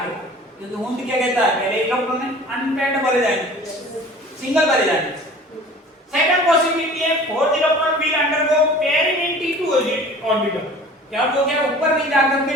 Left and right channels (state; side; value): normal; both; correlation 0.44